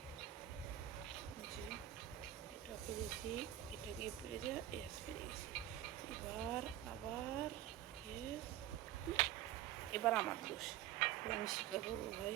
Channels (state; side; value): quieter; left; 12.9 dB